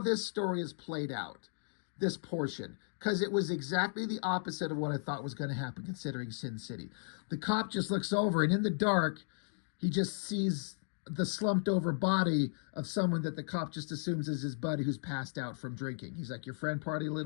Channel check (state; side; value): silent; right; digital silence